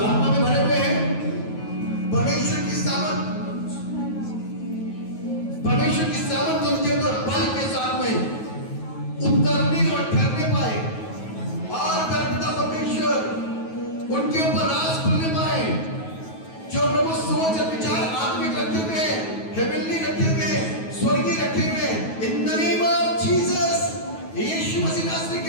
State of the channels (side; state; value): right; late; 9.3 ms